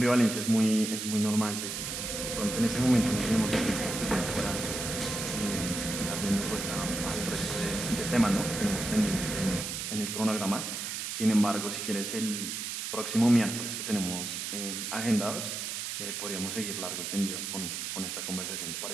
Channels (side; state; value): right; noise; hiss, 4 dB below the sound